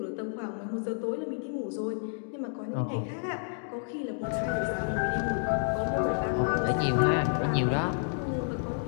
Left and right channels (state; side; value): silent; right; digital silence